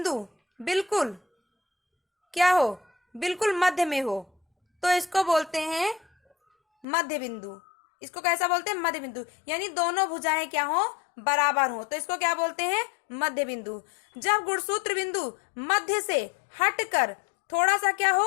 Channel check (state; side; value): drops out; right; at 6.9 s